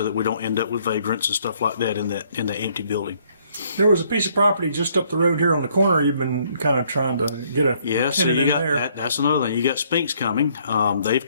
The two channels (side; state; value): both; inverted; correlation -0.66